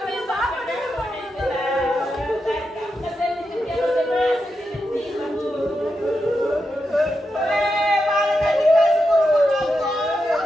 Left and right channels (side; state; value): both; normal; correlation 0.87